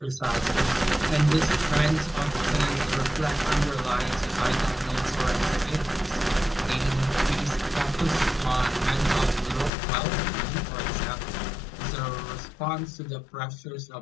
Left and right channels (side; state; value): right; drops out; at 9.7 s